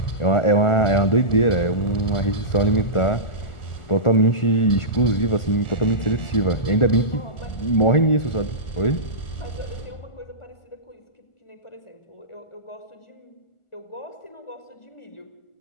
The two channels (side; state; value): right; late; 1.4 ms